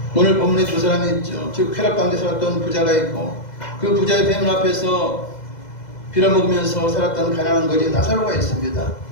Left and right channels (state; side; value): late; right; 2.0 ms